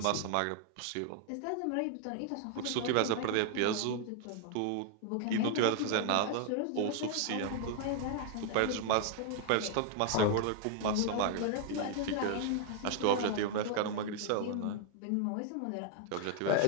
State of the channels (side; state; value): both; different; correlation 0.00